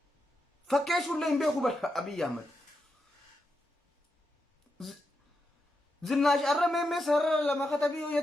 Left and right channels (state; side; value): normal; both; correlation 0.86